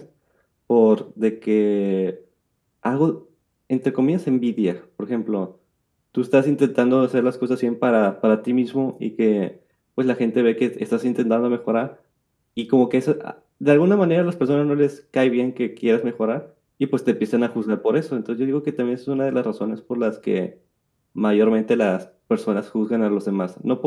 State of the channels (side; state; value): both; identical; correlation 1.00